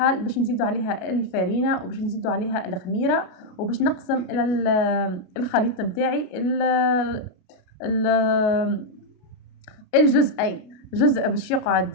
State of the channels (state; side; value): late; right; 33 ms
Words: باش نزيدوا عليها الفارينه، وباش نزيدوا عليها الخميره، وباش نقسم الى الخليط نتاعي الجزئين. جزء باش